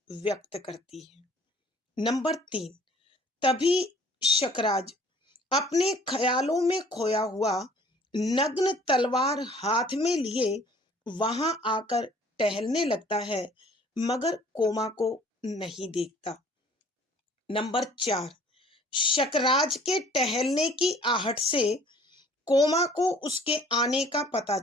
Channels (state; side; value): normal; both; correlation 0.54